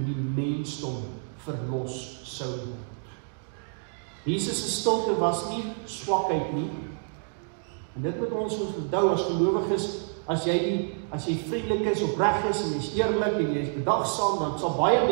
die mensdom verlos sou word. Jesus se stilte was nie swakheid nie. En dit moet ons onthou as gelowiges, as jy vriendelik is, opreg is en jy is eerlik en jy is bedagsaam, dan sal baie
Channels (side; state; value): left; silent; digital silence